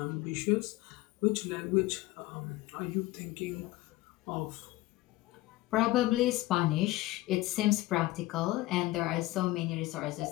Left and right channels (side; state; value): right; quieter; 18.1 dB